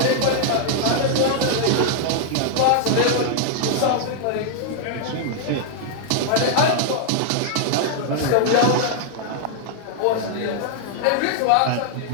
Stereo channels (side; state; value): both; different; correlation -0.01